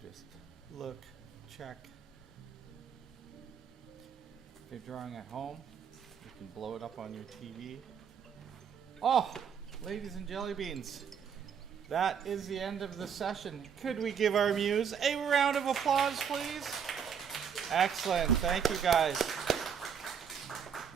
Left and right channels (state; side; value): quieter; left; 7.4 dB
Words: Just look, check. If you're drawing at home, you can blow it up on your TV. Oh, ladies and jelly beans, that is the end of the session. Could we give our muse a round of applause, please? Excellent. Thank you, guys.